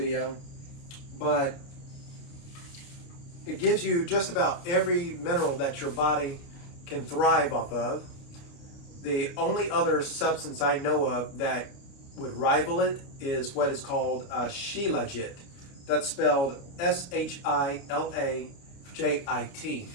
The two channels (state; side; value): late; right; 29 ms